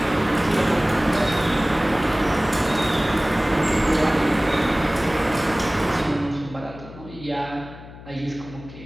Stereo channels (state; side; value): noise; left; hum, 17 dB below the sound